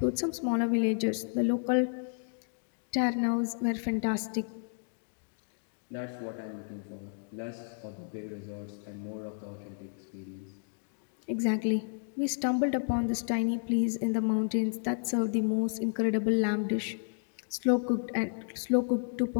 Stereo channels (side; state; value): right; silent; digital silence